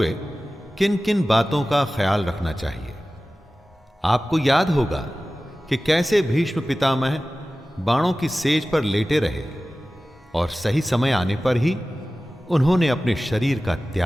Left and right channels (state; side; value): normal; both; correlation 0.96